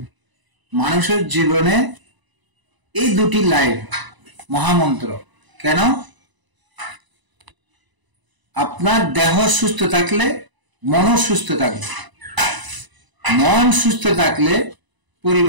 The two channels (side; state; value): left; late; 1.0 ms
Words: মানুষের জীবনে এই দুটি লাইন মহামন্ত্র। কেন? আপনার দেহ সুস্থ থাকলে মনও সুস্থ থাকবে, মন সুস্থ থাকলে